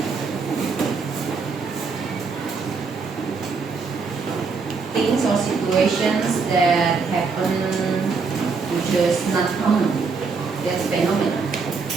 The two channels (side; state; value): left; quieter; 4.8 dB